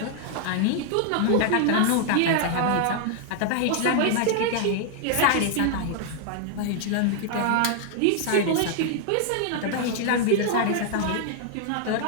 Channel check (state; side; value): different; both; correlation 0.00